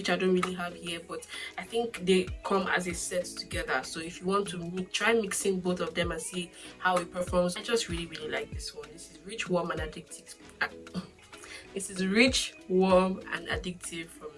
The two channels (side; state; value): both; identical; correlation 1.00